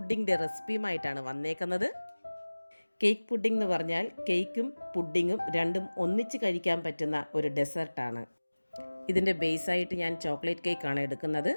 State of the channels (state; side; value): inverted; both; correlation -1.00